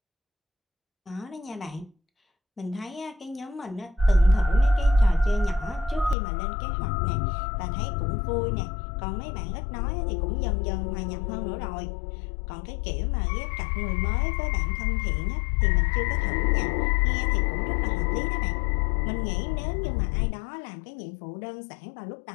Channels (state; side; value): drops out; right; at 6.2 s